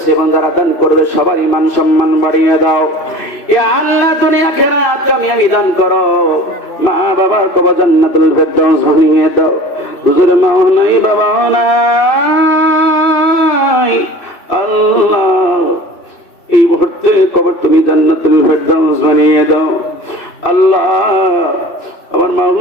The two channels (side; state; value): right; late; 2.6 ms